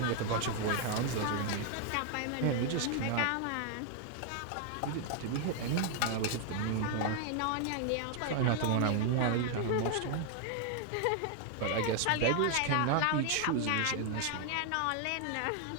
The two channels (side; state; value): both; different; correlation 0.00